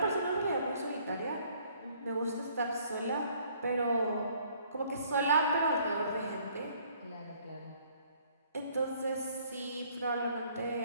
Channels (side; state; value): both; inverted; correlation -0.61